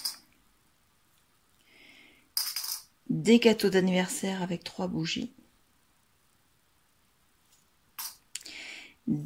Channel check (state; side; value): identical; both; correlation 1.00